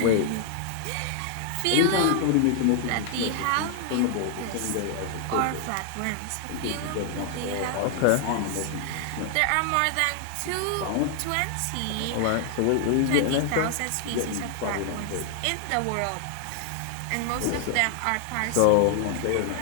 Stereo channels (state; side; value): different; both; correlation 0.00